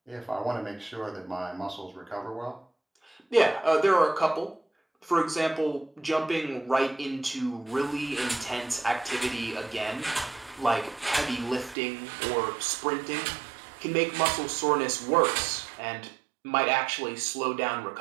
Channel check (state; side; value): drops out; left; at 11.8 s